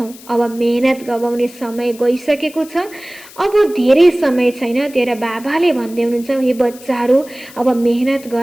अब मेहनत गवाउने समय गइसकेको छ, अब धेरै समय छैन। तेरा बाबाले भन्दै हुनुहुन्छ, हे बच्चाहरू अब मेहनत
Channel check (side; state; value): left; noise; hiss, 20 dB below the sound